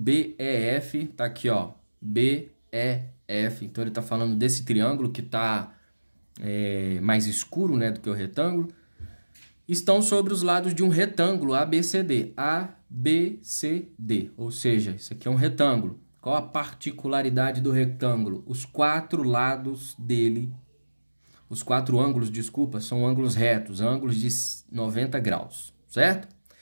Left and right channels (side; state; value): both; inverted; correlation -1.00